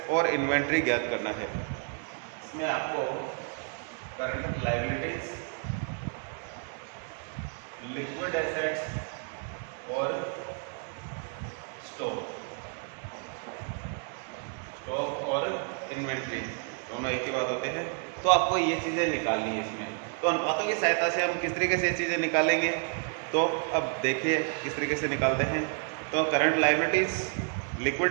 और इन्वेंट्री ज्ञात करना है। इसमें आपको करंट लायबिलिटीज, लिक्विड एसेट्स और स्टॉक और इन्वेंट्री दोनों एक ही बात होते हैं। तो आपको ये चीज़ें निकालनी है इसमें। तो अनुपातों की सहायता से हम किस तरीके से ये चीज़ें निकालेंगे, तो अब देखिए किस तरीके से निकालते हैं। तो करंट लायबिलिटीज,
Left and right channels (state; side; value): quieter; left; 39.9 dB